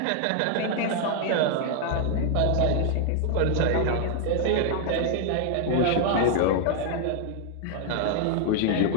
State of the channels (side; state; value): both; different; correlation 0.00